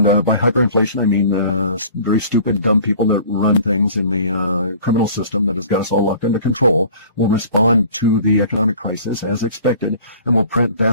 by hyperinflation, I mean very stupid, dumb people that run things in the criminal system that has got us all locked under control will respond to the economic crisis as expected, and will print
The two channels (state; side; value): inverted; both; correlation -0.47